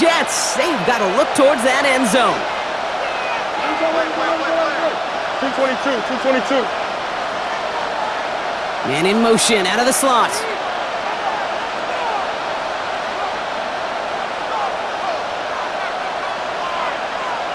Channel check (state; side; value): identical; both; correlation 1.00